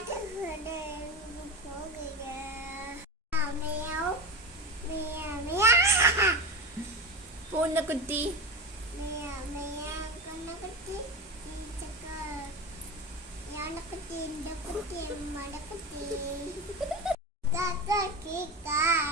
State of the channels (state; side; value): normal; both; correlation 0.22